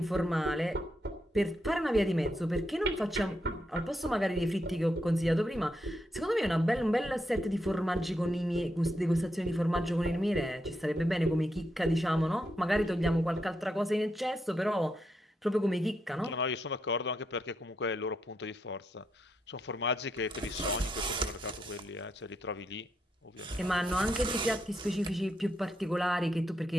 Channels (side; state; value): both; normal; correlation 0.81